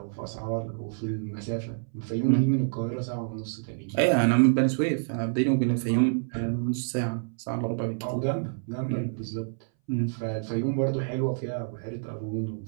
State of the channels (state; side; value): silent; left; 59 dB below the other